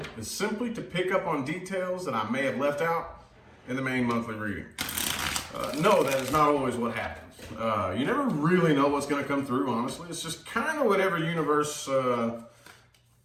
is simply to pick up on details that I may have left out in the main monthly reading. No, that is not always what happens. You never really know what's going to come through, honestly. It's just kind of whatever universe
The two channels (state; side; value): identical; both; correlation 1.00